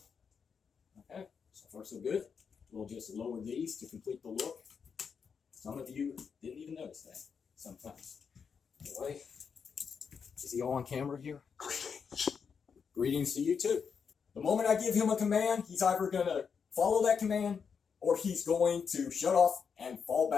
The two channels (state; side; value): quieter; right; 6.3 dB